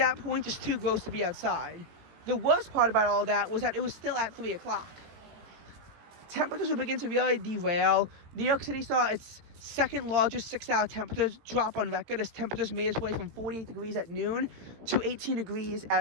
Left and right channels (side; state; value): left; late; 18 ms